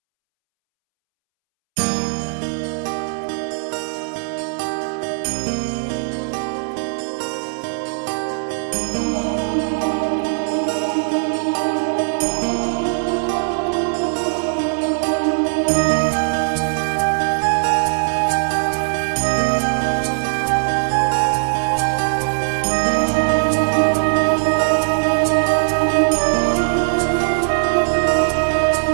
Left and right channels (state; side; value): silent; left; 66 dB below the other